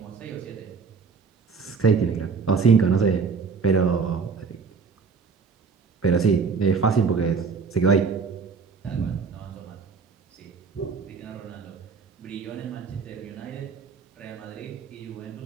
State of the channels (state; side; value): quieter; left; 5.3 dB